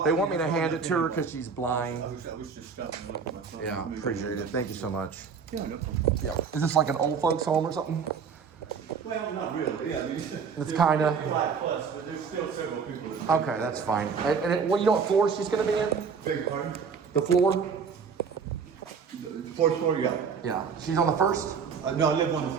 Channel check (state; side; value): quieter; left; 5.9 dB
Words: they want me to hand it to her because she's blind. I was just stopping looking myself. Yeah, appreciate it. Thank you so much. Yeah, no problem. Yeah. Is this like an old folks home or something? Well, not really. Yeah, I mean, it's kind of. But there's still several people. Okay, that's fine. And you know what floor she's going to be in? Beg your pardon? The floor? The fourth floor, yeah. Yeah. She's on the first? No, I live on the